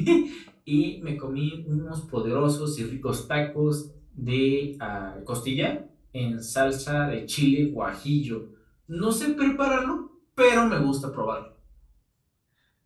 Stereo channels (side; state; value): both; identical; correlation 1.00